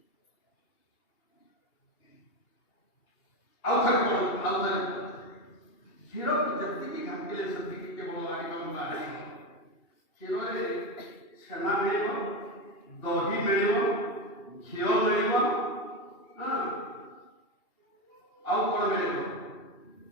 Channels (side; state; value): right; late; 2.7 ms